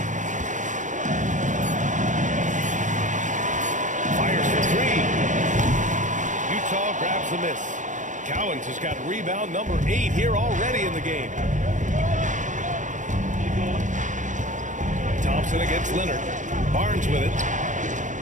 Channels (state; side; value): late; left; 0.36 ms